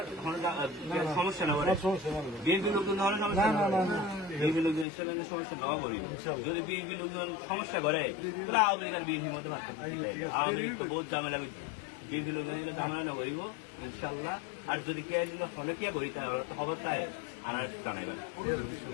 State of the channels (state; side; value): drops out; right; at 4.9 s